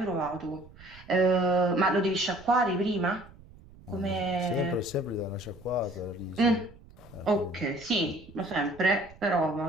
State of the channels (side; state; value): right; noise; rumble, 22 dB below the sound